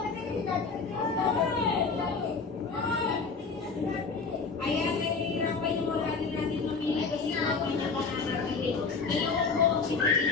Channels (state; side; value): quieter; right; 4.7 dB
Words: Ayan, nahihirapan yung wala din natin mamili kasi mga pinaka-nakakili. Dalawang po ang